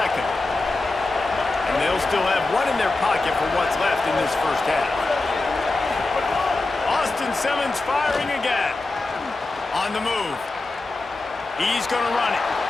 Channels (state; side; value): quieter; right; 3.2 dB